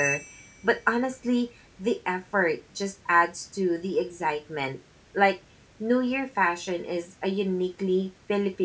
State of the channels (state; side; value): identical; both; correlation 1.00